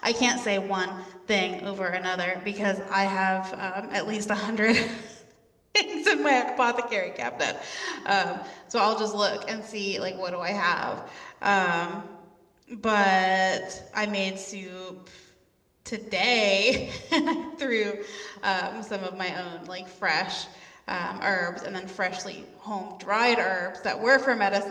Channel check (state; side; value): identical; both; correlation 1.00